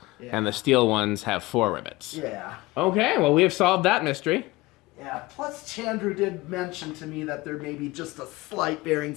Yeah. And the steel ones have 4 rivets. Yeah. Okay, well, we have solved that mystery. Yeah, plus Chandru did mention to me that there may be just a slight bearing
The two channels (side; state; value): right; quieter; 20.4 dB